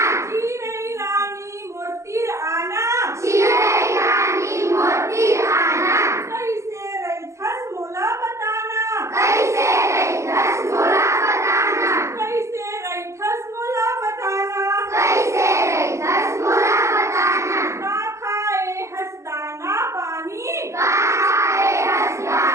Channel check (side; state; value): left; late; 0.14 ms